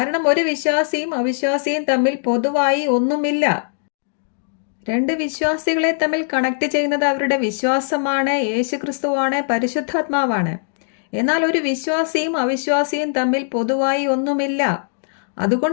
ഒരു വിശ്വാസിയും അവിശ്വാസിയും തമ്മിൽ പൊതുവായി ഒന്നുമില്ല. രണ്ട് വിശ്വാസികളെ തമ്മിൽ കണക്ട് ചെയ്യുന്നത് അവരുടെ വിശ്വാസമാണ്, യേശുക്രിസ്തുവാണ്, പരിശുദ്ധാത്മാവാണ്. എന്നാൽ ഒരു വിശ്വാസിയും അവിശ്വാസിയും തമ്മിൽ പൊതുവായി ഒന്നുമില്ല.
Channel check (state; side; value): silent; right; digital silence